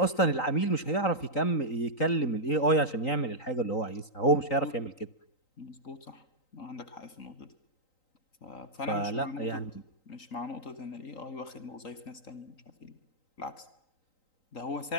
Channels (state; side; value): late; right; 3.9 ms